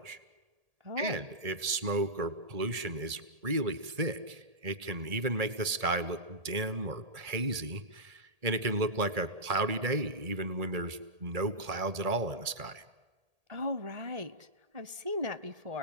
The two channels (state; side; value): late; left; 1.8 ms